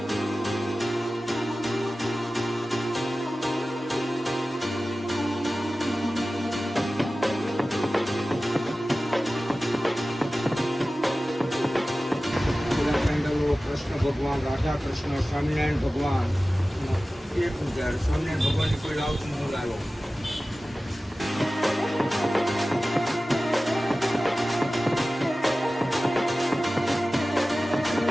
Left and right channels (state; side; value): normal; both; correlation 0.96